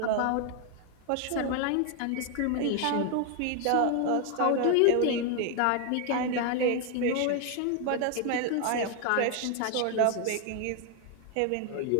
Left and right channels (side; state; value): both; different; correlation 0.01